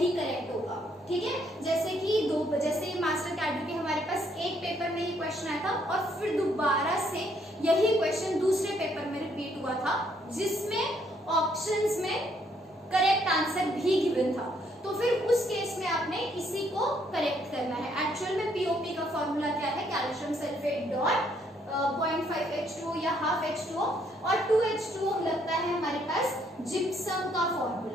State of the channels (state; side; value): normal; both; correlation 0.70